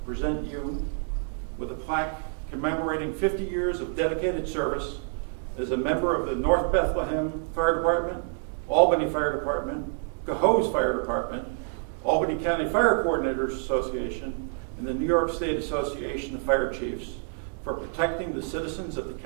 present you with a plaque commemorating 50 years of dedicated service as a member of the North Bethlehem Fire Department, Albany Fire Department, Cohoes Fire Department, Albany County Fire Coordinators Association, and the New York State Association of Fire Chiefs for protecting the citizens of the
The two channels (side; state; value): left; silent; 60 dB below the other